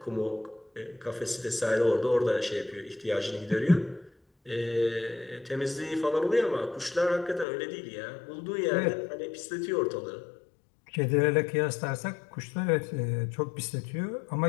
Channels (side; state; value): right; drops out; at 7.5 s